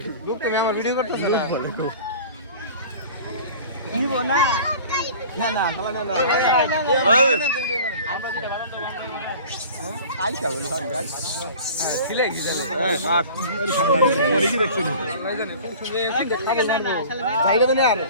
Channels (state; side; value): inverted; both; correlation -0.43